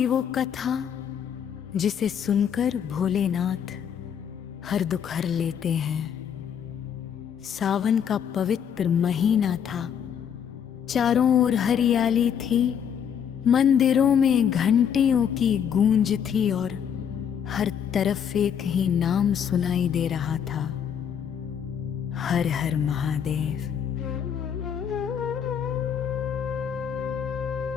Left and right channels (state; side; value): quieter; right; 8.2 dB